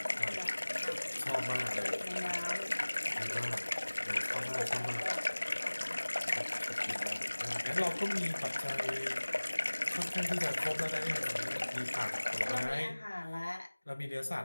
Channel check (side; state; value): both; inverted; correlation -1.00